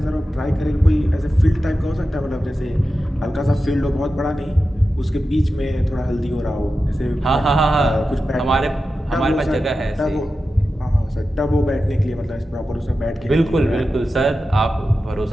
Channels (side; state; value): both; normal; correlation 0.92